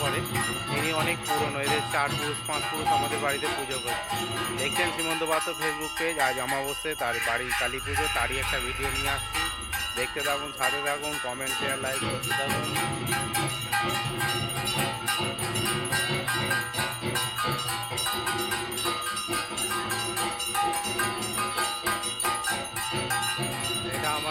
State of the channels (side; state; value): both; identical; correlation 1.00